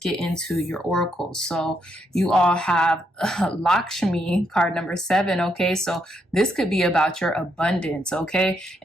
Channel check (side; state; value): both; normal; correlation 0.77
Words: into your oracles. So you all have Lakshmi, card number 7. Okay, so this could be about your abundance. Okay,